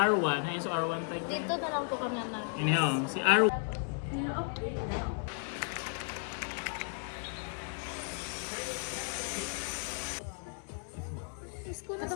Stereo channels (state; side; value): silent; right; 55 dB below the other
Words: ayun so R1 tayo. Dito na lang po kami na. Iniho, si R1. School na